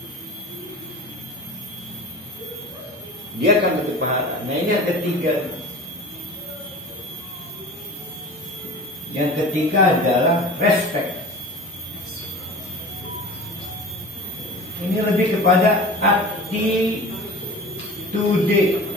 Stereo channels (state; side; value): normal; both; correlation 0.36